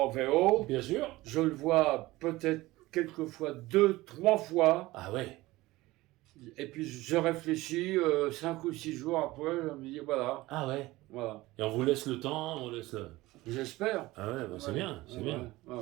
VO. Bien sûr. Je le vois peut-être quelquefois 2-3 fois. Ah ouais. Et puis je réfléchis 5 ou 6 jours après, je me dis voilà. Ah ouais. Voilà. Et on vous laisse le temps, on laisse le... J'espère. Ah ouais, c'est bien, c'est bien. Ouais.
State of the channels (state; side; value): quieter; left; 19.0 dB